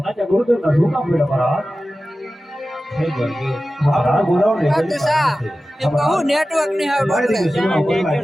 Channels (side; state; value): both; normal; correlation 0.95